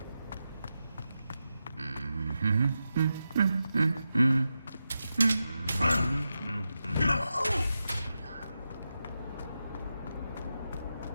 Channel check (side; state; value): both; inverted; correlation -0.90